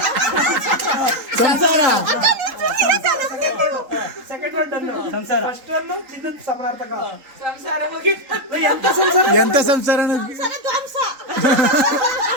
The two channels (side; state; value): left; late; 3.8 ms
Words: ಸಂಸಾರ. ಎಂತ ಸಂಸಾರ?